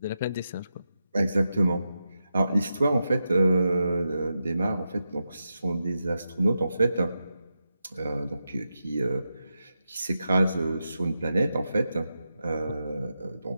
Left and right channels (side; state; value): both; inverted; correlation -0.88